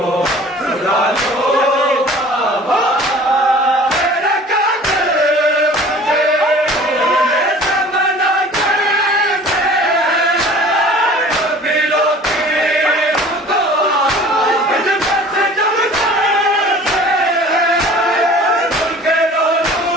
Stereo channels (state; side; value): normal; both; correlation 0.46